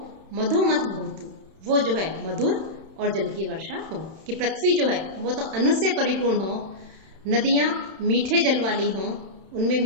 मधुमत भवतु, वो जो है मधुर और जल की वर्षा हो। कि पृथ्वी जो है वो तो अन्न से परिपूर्ण हो, नदियां मीठे जल वाली हो, उनमें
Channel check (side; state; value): left; late; 31 ms